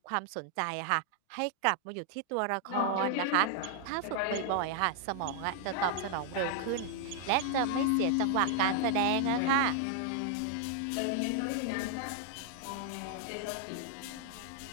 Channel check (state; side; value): different; both; correlation 0.00